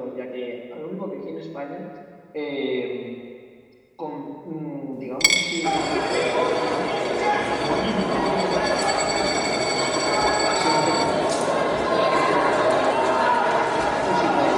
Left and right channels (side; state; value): both; identical; correlation 1.00